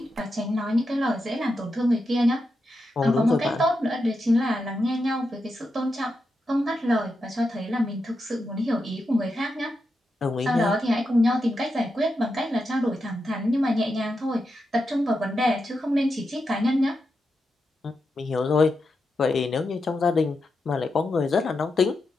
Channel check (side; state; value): both; normal; correlation 0.87